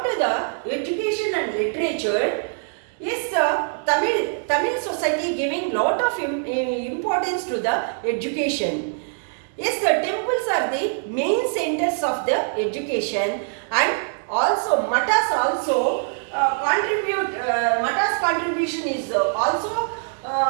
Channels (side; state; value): left; silent; 60 dB below the other